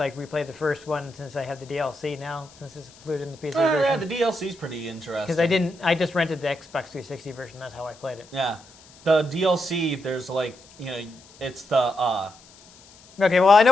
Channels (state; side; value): noise; left; hiss, 24 dB below the sound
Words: replay the first one since I have the DLC now, since it's included in the PC version. Yeah, the DLC's pretty interesting. Because I just rented the Xbox 360 version. That's how I played it. Yeah. The DLC, there's, like, it's the Okay, well, I know